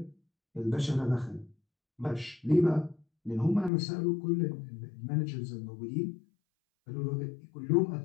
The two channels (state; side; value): drops out; right; at 3.7 s